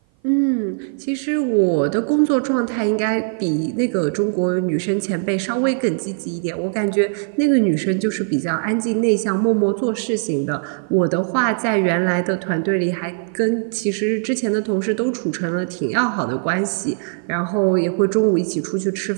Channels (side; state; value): left; silent; 55 dB below the other